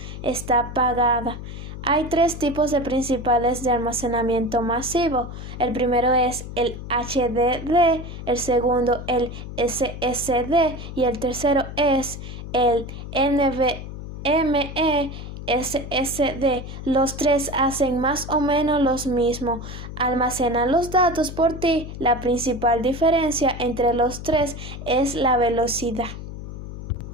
está apagada. Hay tres tipos de principales de almacenamiento masivo. El primero es el HDD, el segundo el SSD y el tercero es el NVMe SSD. Los tres hacen más o menos lo mismo, almacenan los datos por ti. La principal diferencia entre los tres es la velocidad.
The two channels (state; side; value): noise; left; hum, 10 dB below the sound